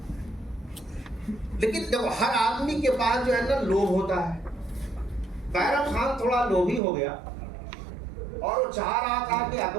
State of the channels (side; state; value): left; drops out; at 6.8 s